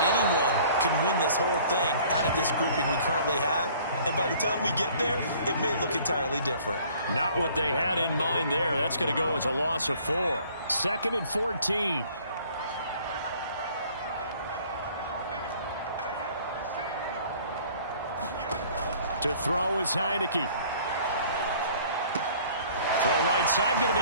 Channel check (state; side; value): inverted; both; correlation -0.54